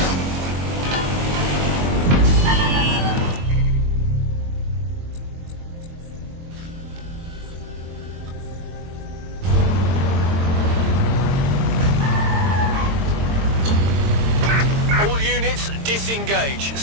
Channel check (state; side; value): late; left; 22 ms